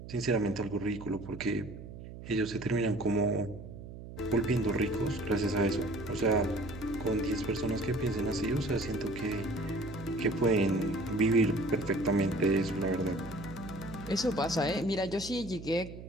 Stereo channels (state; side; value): noise; right; hum, 13 dB below the sound